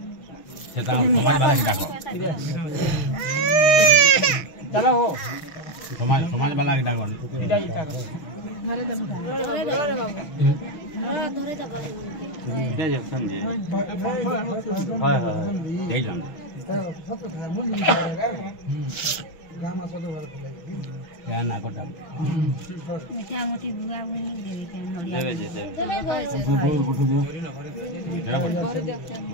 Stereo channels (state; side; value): late; right; 6.2 ms